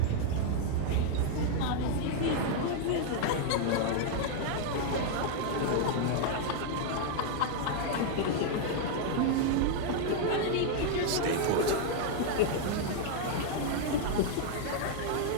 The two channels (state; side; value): different; both; correlation 0.00